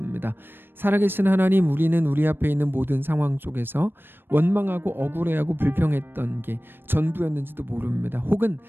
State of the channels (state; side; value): late; left; 0.099 ms